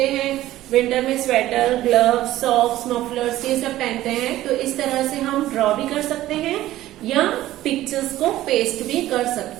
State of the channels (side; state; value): left; quieter; 14.9 dB